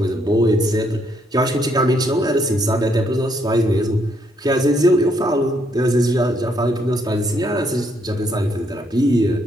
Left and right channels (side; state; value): both; normal; correlation 0.72